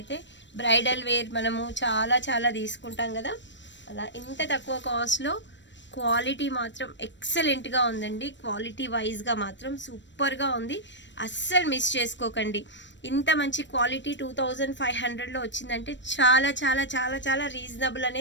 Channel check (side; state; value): right; late; 0.53 ms